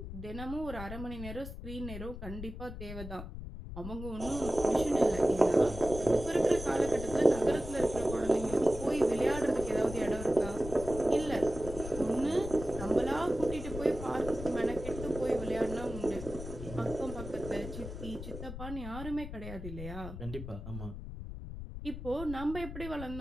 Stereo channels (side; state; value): left; noise; rumble, 9 dB below the sound